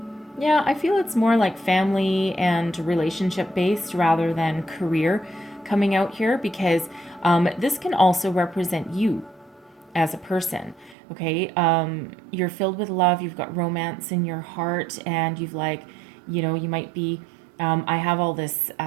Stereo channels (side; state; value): left; drops out; at 11.0 s